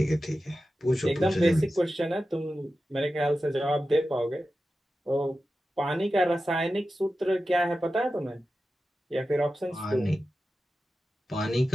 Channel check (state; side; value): normal; both; correlation 0.93